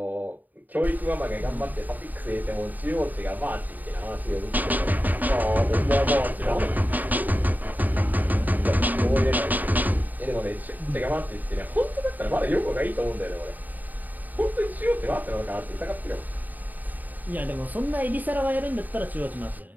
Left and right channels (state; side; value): late; left; 0.084 ms